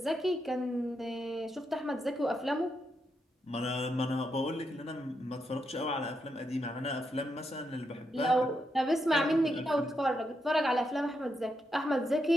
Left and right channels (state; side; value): normal; both; correlation 0.82